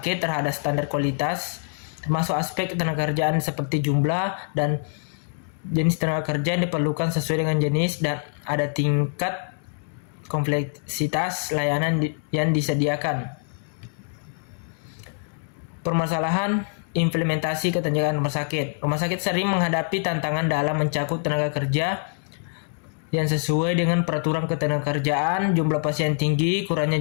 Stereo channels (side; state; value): right; silent; digital silence